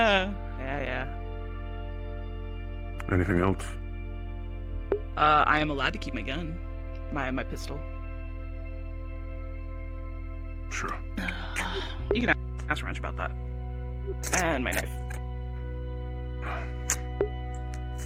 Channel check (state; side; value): identical; both; correlation 1.00